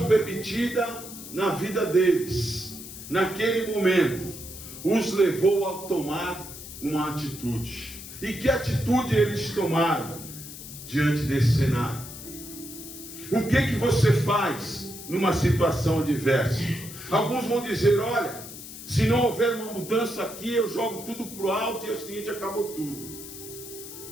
permitida na vida deles, naquele momento, os levou a tomar uma atitude. E que atitude eles tomaram diante desse cenário? O que você faz numa situação adversa? Alguns vão dizer: olha, se não houver uma mudança aqui, eu jogo tudo para o alto e é o seguinte, acabou tudo.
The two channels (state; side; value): noise; left; hiss, 13 dB below the sound